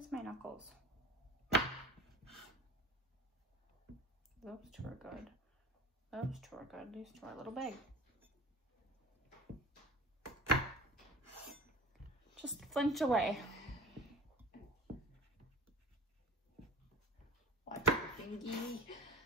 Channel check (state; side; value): normal; both; correlation 0.38